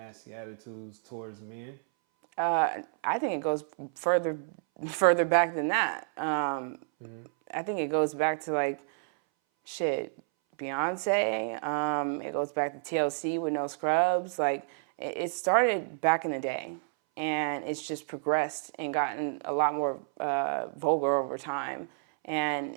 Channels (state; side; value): silent; left; 58 dB below the other